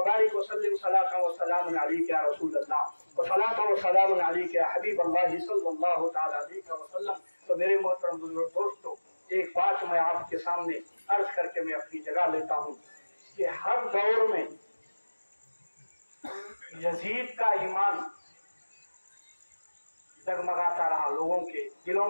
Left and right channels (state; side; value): inverted; both; correlation -1.00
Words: وسلم صلاۃ وسلام علیک یا رسول اللہ وصلاۃ وسلام علیک یا حبیب اللہ صلی اللہ تعالی علیہ وسلم۔ تو میرے محترم بزرگ دوستو، ایک بات میں آپ کے سامنے عرض کر کے میں اپنی جگہ لیتا ہوں کہ ہر دور میں یزید کا ایمان جگمگاتا رہا، لوگوں کے دلوں